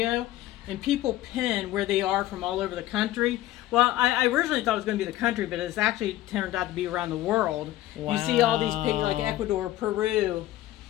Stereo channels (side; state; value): right; quieter; 15.0 dB